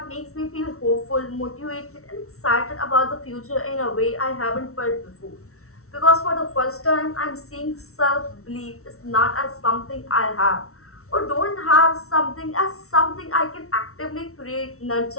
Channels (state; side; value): late; right; 0.63 ms